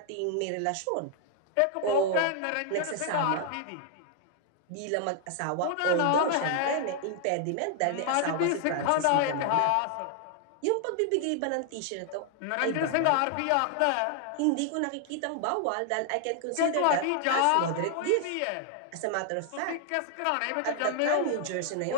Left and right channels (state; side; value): different; both; correlation 0.00